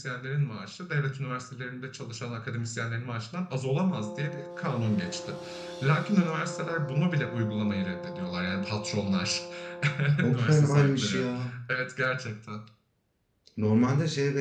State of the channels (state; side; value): identical; both; correlation 1.00